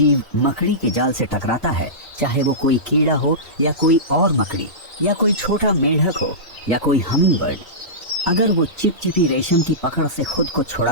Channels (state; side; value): normal; both; correlation -0.19